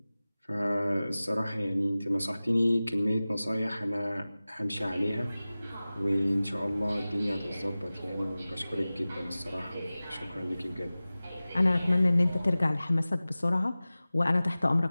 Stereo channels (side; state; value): both; inverted; correlation -0.97